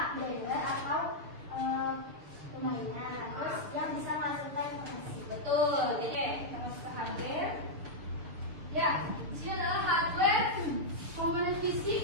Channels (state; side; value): late; left; 6.7 ms